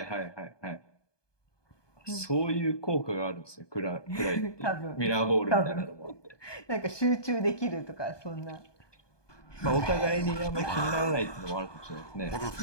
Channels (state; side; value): late; right; 1.2 ms